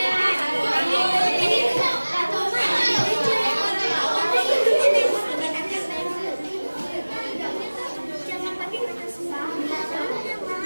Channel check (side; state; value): both; inverted; correlation -1.00